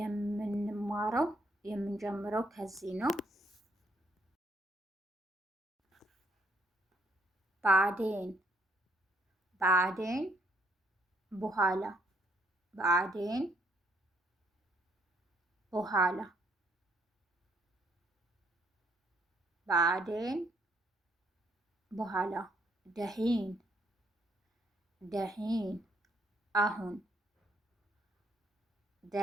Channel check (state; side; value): normal; both; correlation 0.69